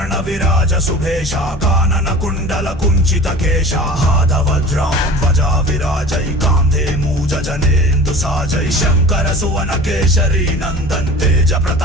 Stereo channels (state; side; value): normal; both; correlation 0.40